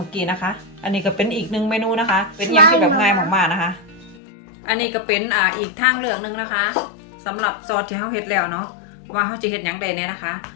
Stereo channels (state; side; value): drops out; right; at 4.2 s